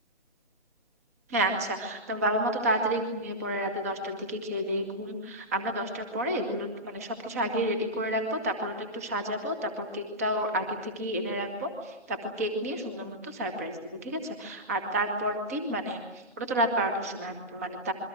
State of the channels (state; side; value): normal; both; correlation -0.09